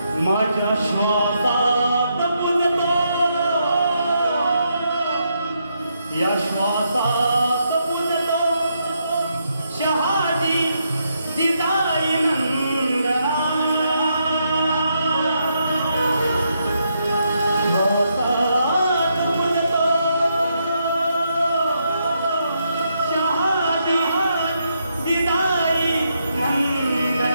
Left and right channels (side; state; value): both; inverted; correlation -0.79